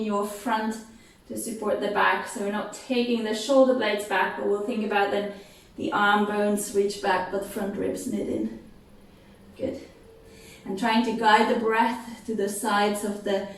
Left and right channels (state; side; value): identical; both; correlation 1.00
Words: your front to support the back. So we're not taking the shoulder blades back, but we'll think about then the arm bones reach back, but front ribs knit in. Good. And trying to guide the breath to the sides of the